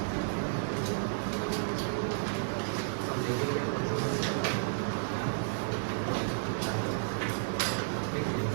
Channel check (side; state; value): left; silent; digital silence